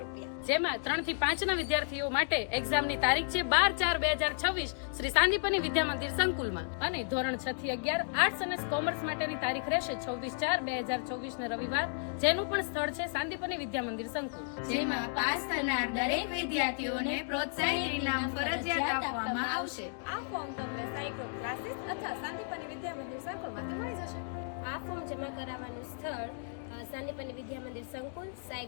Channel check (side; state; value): right; silent; digital silence